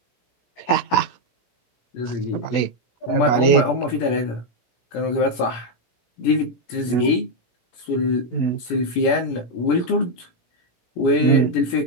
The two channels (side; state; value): right; late; 17 ms